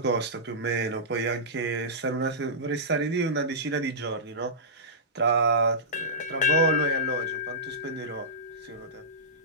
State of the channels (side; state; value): both; normal; correlation -0.17